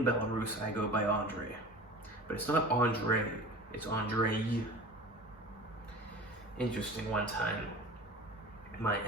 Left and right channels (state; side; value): normal; both; correlation 0.37